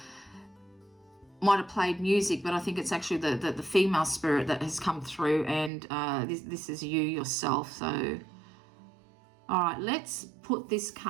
might have played music, but I think it's actually the female spirit that has come through, and this is you yourself. So, all right, let's put this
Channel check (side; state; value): left; drops out; at 5.7 s